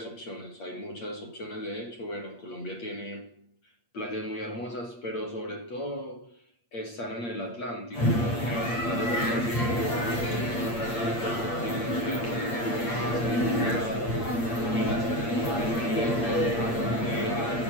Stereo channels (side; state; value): right; late; 8.6 ms